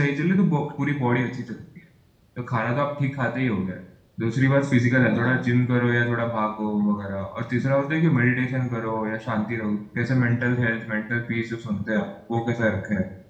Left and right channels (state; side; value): identical; both; correlation 1.00